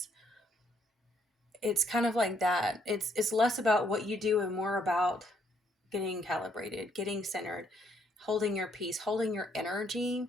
It's kind of like that. It's less about what you do and more about getting calibrated, getting centered, holding your peace, holding your energy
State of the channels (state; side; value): normal; both; correlation 0.71